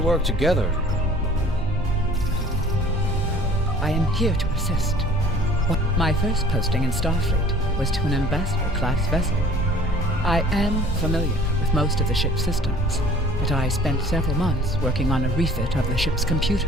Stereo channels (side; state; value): both; normal; correlation 0.50